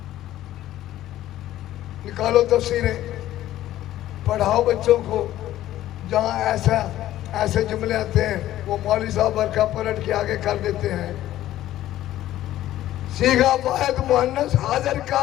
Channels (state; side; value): quieter; right; 13.7 dB